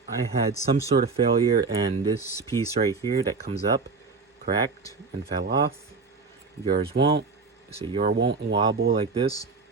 I had some sort of failure, and this piece right here that comes up cracked and fell off. Yours won't. So yours won't wobble like this.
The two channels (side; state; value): left; quieter; 4.5 dB